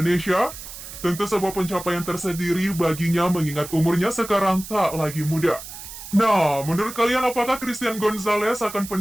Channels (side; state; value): right; noise; hiss, 12 dB below the sound